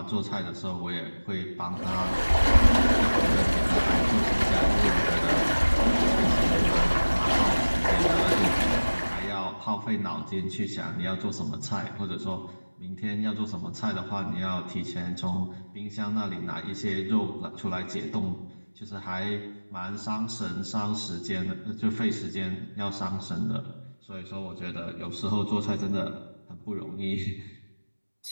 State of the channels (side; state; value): both; inverted; correlation -1.00